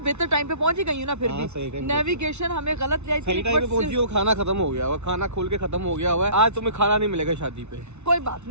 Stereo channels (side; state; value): left; late; 0.82 ms